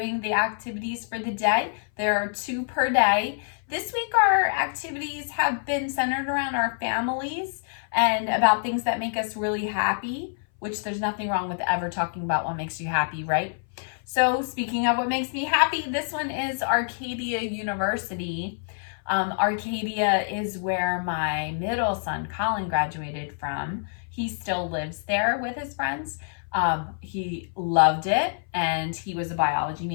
the activities for the day. There are 2 per day. This week our activities have been centered around our families and about things that make us really happy, which there's nothing wrong with ever talking about what makes you happy, right? So speaking of what makes me happy, this one is Arcadia University. Arcadia is where my middle son, Colin, graduated from. He still lives there with his friends. He loved it, and he was a biology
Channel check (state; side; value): silent; right; 59 dB below the other